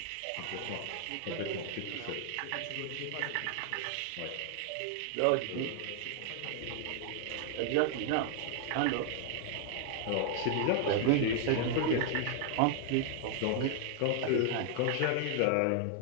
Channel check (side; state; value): both; different; correlation 0.00